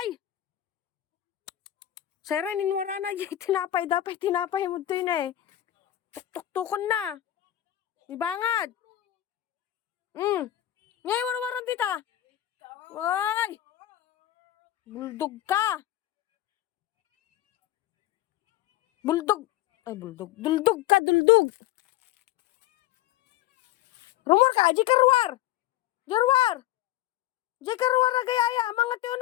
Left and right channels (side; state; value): right; quieter; 14.0 dB